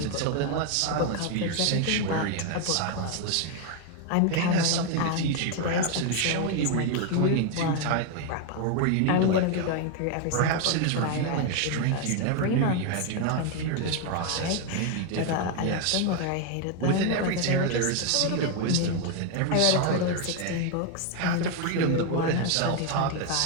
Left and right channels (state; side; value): different; both; correlation 0.01